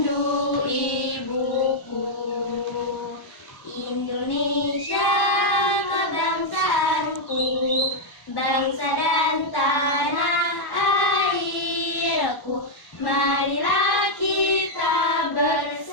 ibuku. Indonesia kebangsaanku, bangsa dan tanah airku. Marilah kita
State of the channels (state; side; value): late; right; 1.0 ms